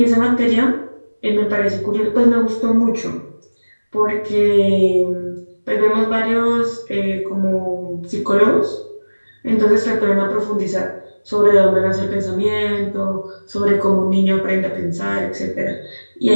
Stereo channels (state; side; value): inverted; both; correlation -1.00